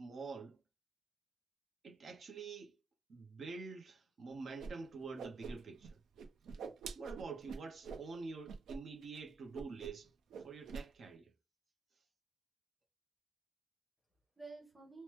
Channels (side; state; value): left; quieter; 4.3 dB